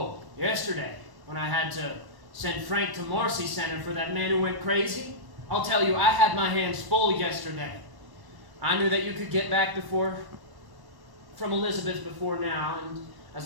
yesterday, when I had to send Frank to Marcy Center for that man who went crazy? I'll tell you, I had my hands full yesterday. I knew that you could get back from Elizabeth before now, and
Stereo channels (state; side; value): late; left; 1.1 ms